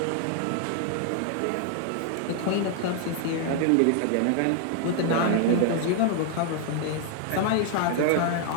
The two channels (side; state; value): both; different; correlation 0.00